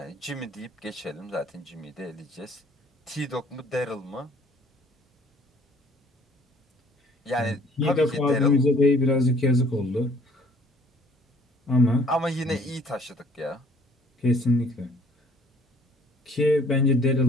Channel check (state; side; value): normal; both; correlation 0.57